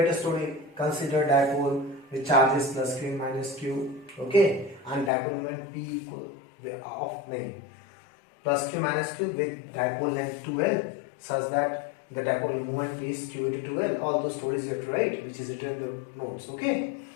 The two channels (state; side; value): drops out; right; at 5.1 s